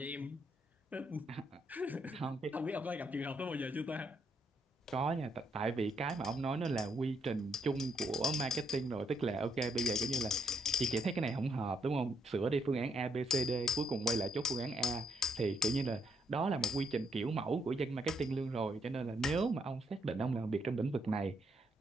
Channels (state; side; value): normal; both; correlation 0.75